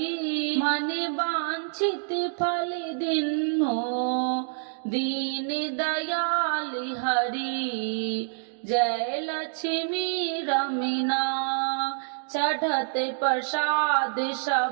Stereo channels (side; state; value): left; silent; digital silence